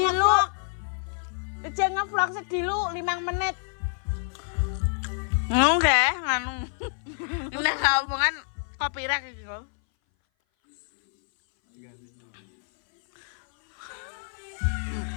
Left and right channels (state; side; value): silent; right; 59 dB below the other